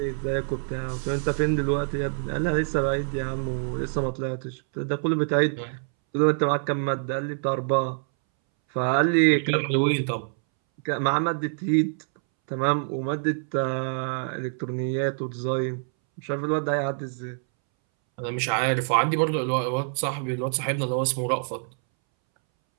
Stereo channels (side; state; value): left; silent; 61 dB below the other